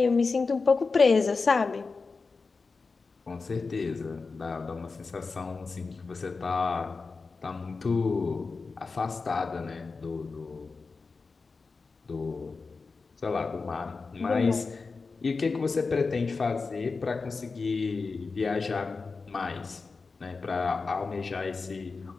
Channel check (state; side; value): quieter; right; 4.3 dB